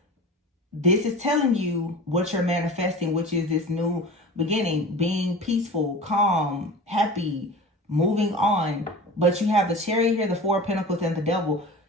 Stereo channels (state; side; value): normal; both; correlation 0.35